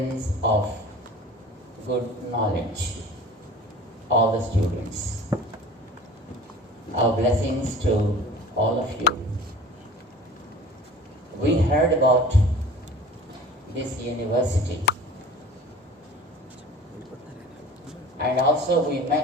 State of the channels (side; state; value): both; normal; correlation 0.42